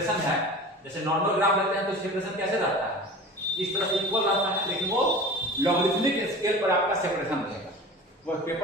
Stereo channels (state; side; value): normal; both; correlation 0.37